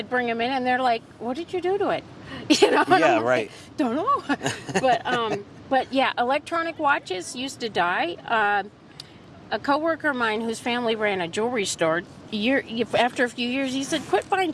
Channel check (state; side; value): identical; both; correlation 1.00